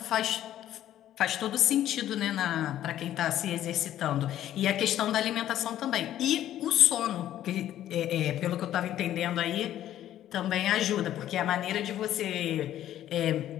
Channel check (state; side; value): quieter; right; 12.2 dB